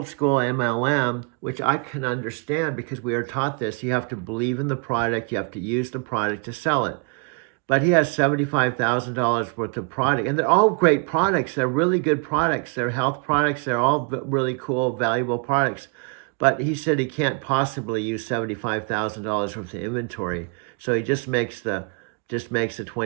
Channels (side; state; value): left; quieter; 36.4 dB